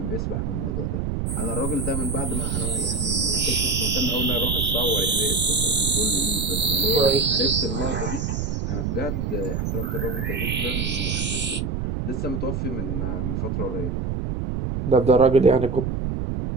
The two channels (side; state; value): right; noise; rumble, 1 dB below the sound